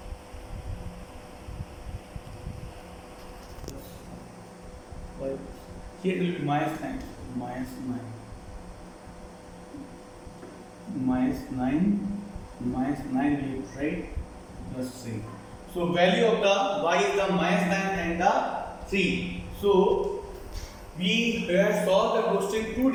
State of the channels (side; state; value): both; identical; correlation 1.00